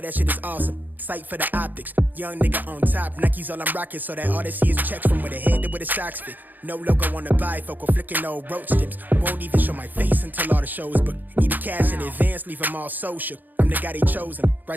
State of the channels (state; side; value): late; left; 0.086 ms